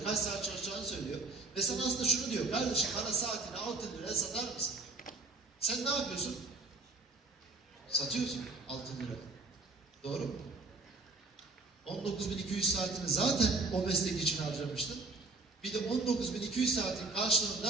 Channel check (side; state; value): left; quieter; 3.6 dB